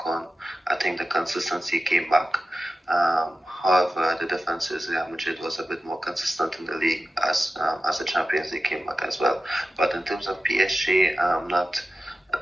on, I think the consistency came back. However, the difference is Real Madrid was a bit more consistent in the league as the Champions League came back as well. But in terms of PSG, I'm not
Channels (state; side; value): normal; both; correlation 0.93